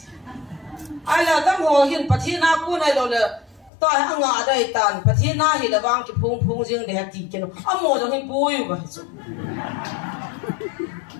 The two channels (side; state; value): right; drops out; at 3.7 s